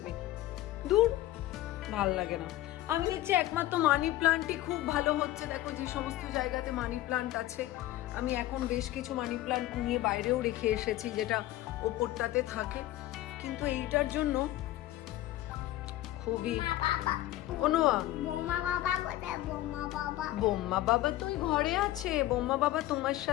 দূর, ভাল লাগে না। আমি দেখছি একমাত্র মানি প্লান্টই খুব ভালো হচ্ছে। দেখো, যে সমস্ত জায়গাতে মানি প্লান্ট আছে, আমি এখন বেশ কিছু মানি প্লান্ট নিয়ে বাইরেও রেখে এসেছি, যেটা ওপরটাতে থাকে। কিন্তু এইটার জন্য খুবই বোম্মা বাবা তো ঘরে আছে। বোম্মা বাবা তোমার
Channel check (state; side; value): quieter; right; 15.2 dB